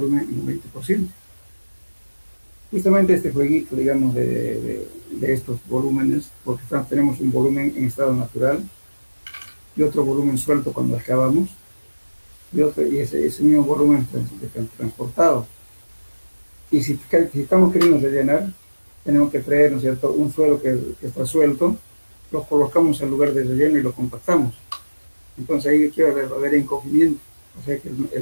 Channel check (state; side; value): inverted; both; correlation -1.00